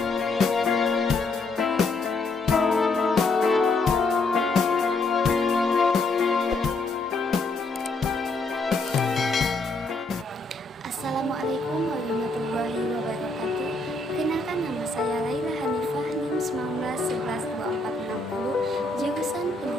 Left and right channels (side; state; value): right; quieter; 3.2 dB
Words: warahmatullahi wabarakatuh. Kenalkan, nama saya Laila Hanifah, NIM 19112460, jurusan